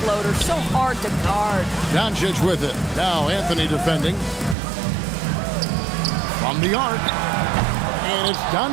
so hard to guard. Doncic with it. Now Anthony defending. From the arc. And it's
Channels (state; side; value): drops out; left; at 4.5 s